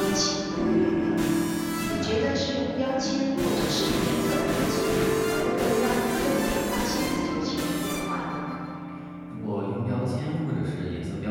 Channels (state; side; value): identical; both; correlation 1.00